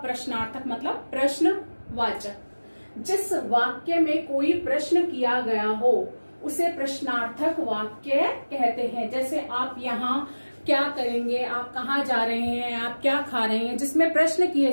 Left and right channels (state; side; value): inverted; both; correlation -1.00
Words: मतलब प्रश्नवाचक। जिस वाक्य में कोई प्रश्न किया गया हो उसे प्रश्नार्थक वाक्य कहते हैं। जैसे आप यहाँ क्या करेंगे, आप कहाँ जा रहे हैं, आप क्या खा रहे हैं, जिसमें प्रश्न किए